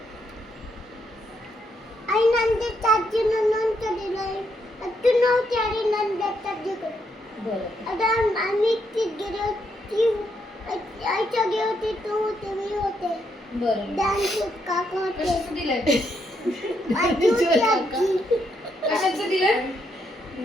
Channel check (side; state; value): both; normal; correlation 0.77